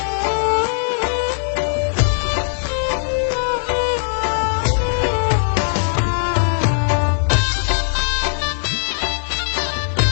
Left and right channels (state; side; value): silent; right; digital silence